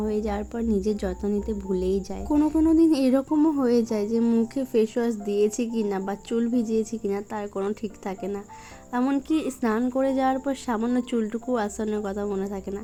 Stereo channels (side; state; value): both; identical; correlation 1.00